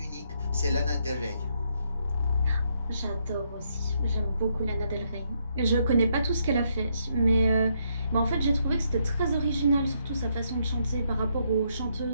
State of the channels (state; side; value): inverted; both; correlation -0.75